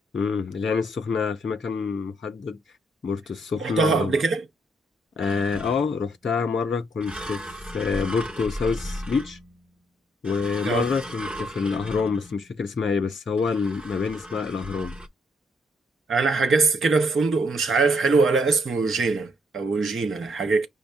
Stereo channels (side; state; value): both; normal; correlation 0.72